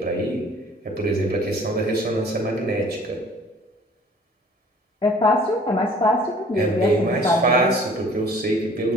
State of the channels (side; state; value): both; normal; correlation 0.52